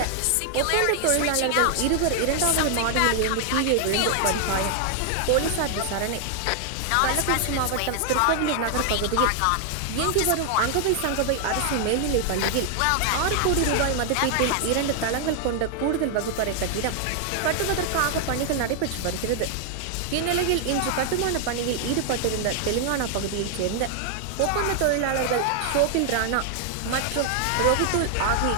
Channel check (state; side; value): different; both; correlation 0.00